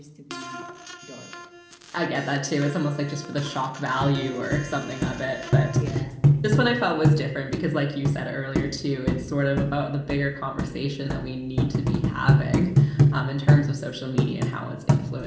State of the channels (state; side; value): identical; both; correlation 1.00